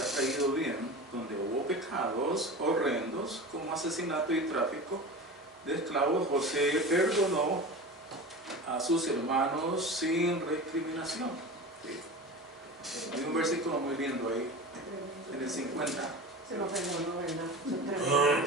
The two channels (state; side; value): normal; both; correlation 0.31